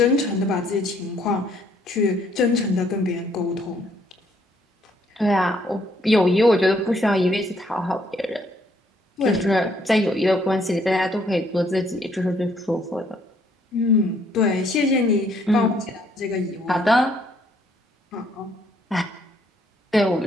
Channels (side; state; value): both; normal; correlation 0.67